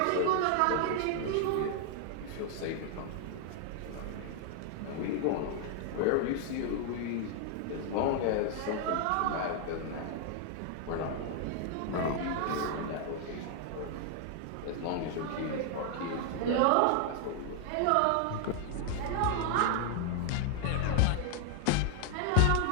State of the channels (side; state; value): both; different; correlation 0.00